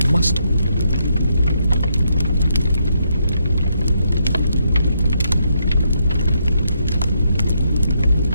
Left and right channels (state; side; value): inverted; both; correlation -0.77